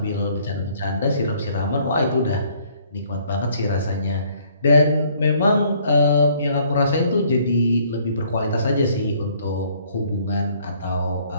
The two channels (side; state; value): both; inverted; correlation -0.62